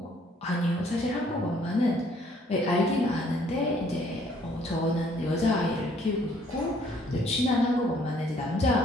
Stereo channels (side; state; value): both; normal; correlation 0.62